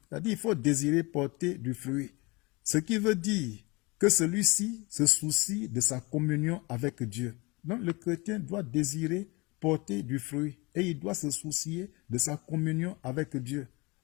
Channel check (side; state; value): right; quieter; 26.2 dB